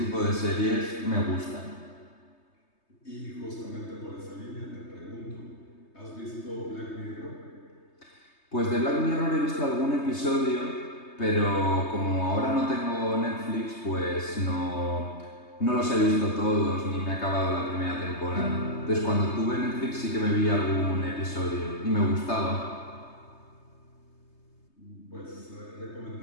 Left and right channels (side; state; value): right; late; 3.3 ms